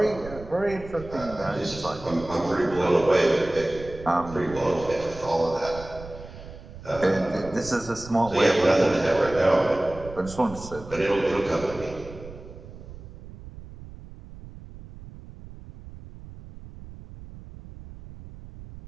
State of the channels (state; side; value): noise; right; rumble, 15 dB below the sound